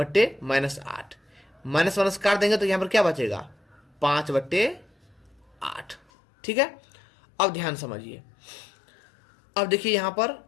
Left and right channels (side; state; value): right; drops out; at 6.0 s